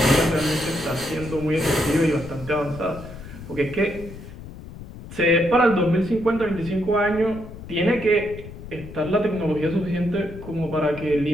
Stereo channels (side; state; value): left; noise; rumble, 14 dB below the sound